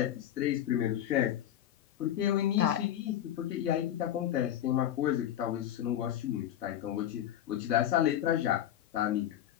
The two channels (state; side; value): quieter; right; 11.4 dB